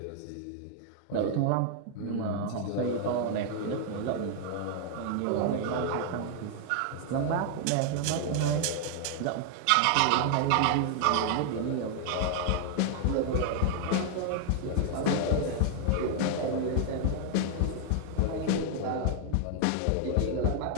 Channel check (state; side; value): different; both; correlation 0.00